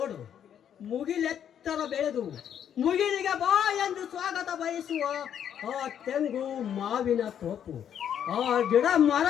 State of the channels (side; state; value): right; quieter; 9.2 dB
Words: ಮುಗಿಲೆತ್ತರ ಬೆಳೆದು ಮುಗಿಲಿಗೆ ಬಾ ಎಂದು ಸ್ವಾಗತ ಬಯಸುವ ಆ ತೆಂಗು ಮಾವಿನ ತೋಪು, ಆ ಗಿಡ